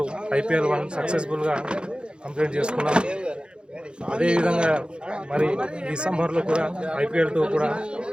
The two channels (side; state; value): left; late; 0.053 ms